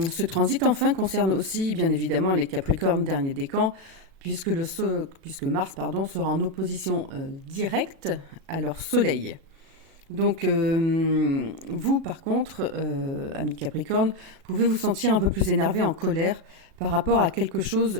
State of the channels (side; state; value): left; late; 37 ms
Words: transit enfin concerne aussi bien évidemment les Capricornes dernier décan puisque Mars sera en opposition directe à leur soleil. Donc vous par contre, amis Capricorne, pouvez vous sentir un peu plus énervé, en colère par rapport à quelque